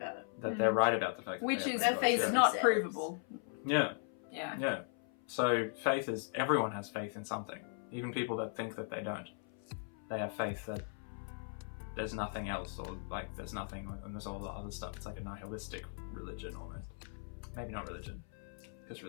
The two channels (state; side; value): silent; right; 52 dB below the other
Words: it. That they're right about the fact that which they is have no faith gods. is not provable. Yeah. Yeah. So faith is, everyone has faith in something. Even people that think that they don't. They have faith that there's nothing else, or like there's nothing and there's all the other stuff. It's like a nihilistic religion almost. Maybe not religion, because